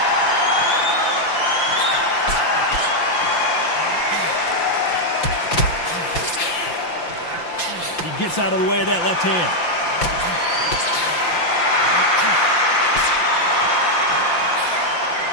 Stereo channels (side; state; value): right; late; 5.8 ms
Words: He gets out of the way of that left hand.